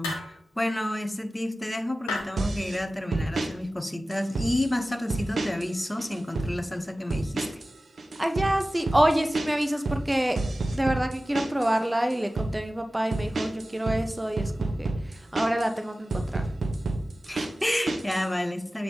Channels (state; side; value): normal; both; correlation 0.96